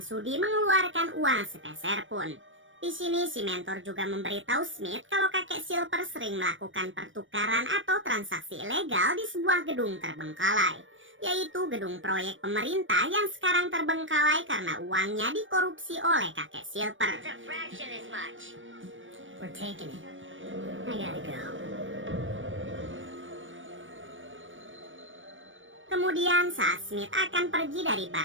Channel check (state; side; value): late; left; 0.56 ms